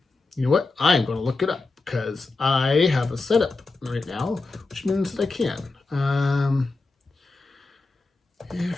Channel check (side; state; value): right; quieter; 3.6 dB